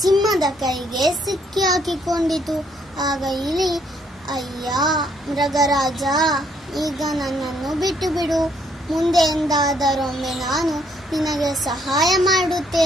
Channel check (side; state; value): both; normal; correlation 0.69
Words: ಕೈಗೆ ಸಿಕ್ಕಿ ಹಾಕಿಕೊಂಡಿತು. ಆಗ ಇಲಿ, ಅಯ್ಯ ಮೃಗರಾಜ, ಈಗ ನನ್ನನ್ನು ಬಿಟ್ಟು ಬಿಡು. ಮುಂದೆ ಎಂದಾದರೊಮ್ಮೆ ನಾನು ನಿನಗೆ ಸಹಾಯ